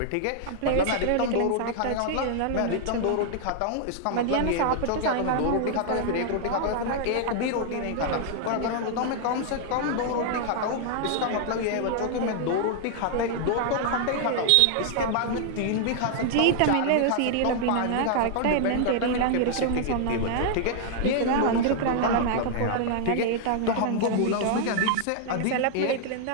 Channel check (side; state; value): both; different; correlation 0.00